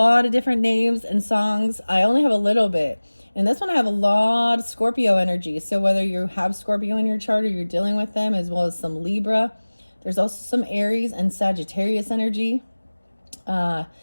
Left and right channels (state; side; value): inverted; both; correlation -1.00